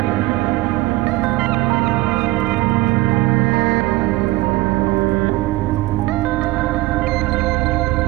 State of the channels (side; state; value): left; quieter; 18.9 dB